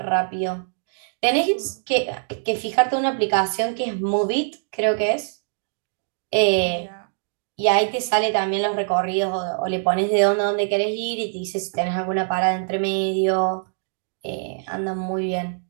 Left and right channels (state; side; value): silent; left; digital silence